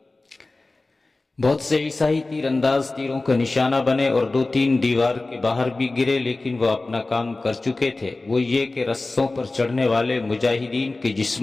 بہت سے عیسائی تیر انداز تیروں کا نشانہ بنے اور دو تین دیوار کے باہر بھی گرے، لیکن وہ اپنا کام کر چکے تھے۔ وہ یہ کہ رسوں پر چڑھنے والے مجاہدین کے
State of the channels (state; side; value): quieter; right; 3.2 dB